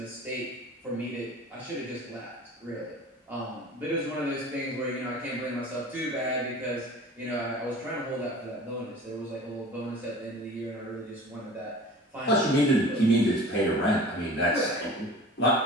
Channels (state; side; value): normal; both; correlation 0.41